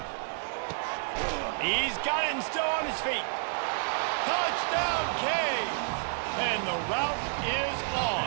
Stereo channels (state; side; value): silent; left; 58 dB below the other